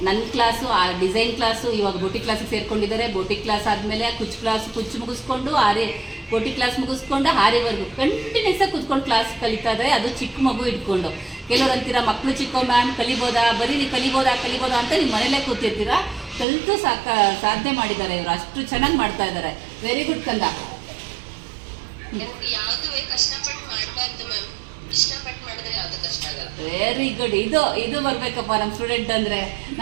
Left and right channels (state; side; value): drops out; left; at 16.4 s